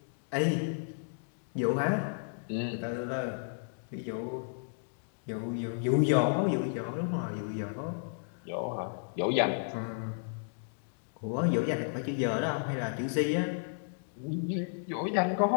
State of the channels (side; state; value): right; silent; digital silence